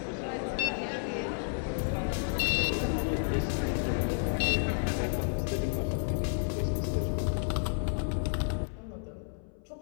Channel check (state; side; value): silent; right; 57 dB below the other